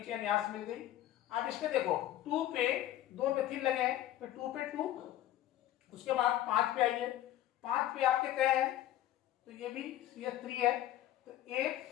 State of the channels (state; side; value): quieter; right; 13.3 dB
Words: चेन यहां से मिल गई। अब इसमें देखो 2 पे 2 मेथिल लगे हैं तो 2 पे 2। उसके बाद 5 पे आइए, 5 पे आपके कहे हैं तो ये भी CH3 है। तो 1